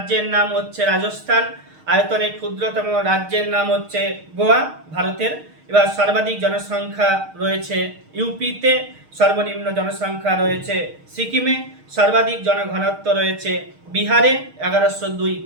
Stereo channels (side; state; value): left; late; 6.4 ms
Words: নাম হচ্ছে রাজস্থান, আয়তনে ক্ষুদ্রতম রাজ্যের নাম হচ্ছে গোয়া ভারতের। এবার সর্বাধিক জনসংখ্যা রয়েছে ইউপিতে, সর্বনিম্ন জনসংখ্যা রয়েছে সিকিমে, সর্বাধিক জনঘনত্ব রয়েছে বিহারে 1102